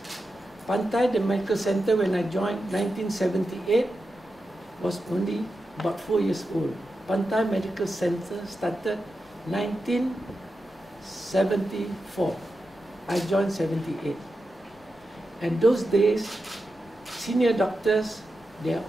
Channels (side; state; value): both; normal; correlation 0.90